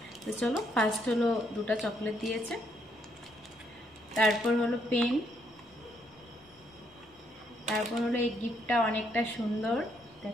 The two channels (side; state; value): both; normal; correlation 0.73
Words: তো চলো, ফার্স্ট হলো দুটো চকলেট দিয়েছে, তারপর হলো পেন, তারপর হলো এই গিফটটা অনেকটা সুন্দর,